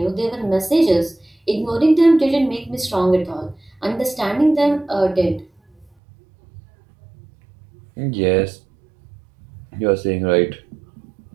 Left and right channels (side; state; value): left; drops out; at 5.9 s